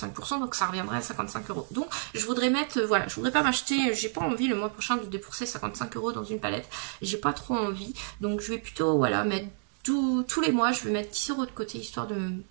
donc ça reviendrait à 55 €. Donc je voudrais mettre, voilà, je voudrais pas m'acheter, j'ai pas envie le mois prochain de débourser 55 € dans une palette, j'ai pas trop envie. Donc je vais plutôt, voilà, mettre tous les mois je vais mettre 10 € de côté histoire de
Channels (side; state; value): left; silent; digital silence